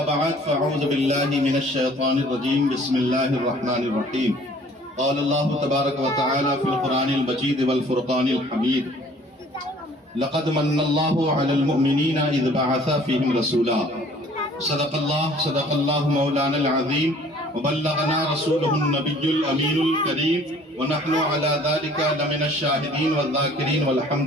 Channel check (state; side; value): normal; both; correlation 0.54